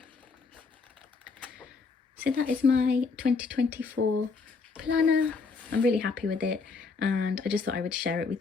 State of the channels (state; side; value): quieter; right; 4.6 dB